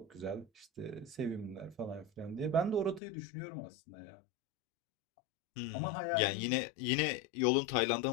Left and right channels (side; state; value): right; drops out; at 3.0 s